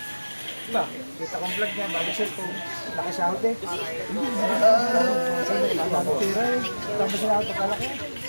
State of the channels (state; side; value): inverted; both; correlation -1.00